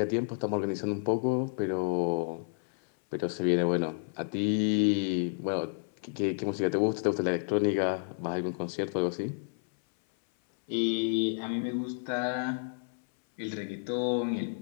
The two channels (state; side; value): silent; right; 57 dB below the other